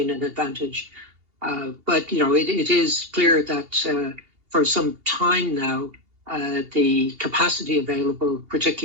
an advantage. But it is clear that for some time now, the capacity available,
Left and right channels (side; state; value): left; late; 2.8 ms